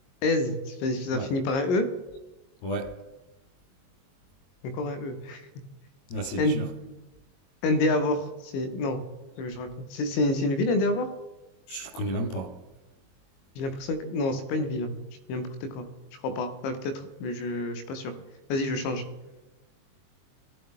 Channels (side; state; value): right; late; 22 ms